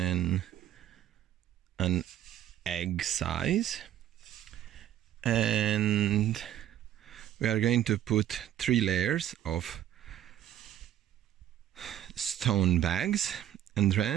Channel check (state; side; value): quieter; left; 11.7 dB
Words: an egg size, and we are going to put 3 layers of stone bags, and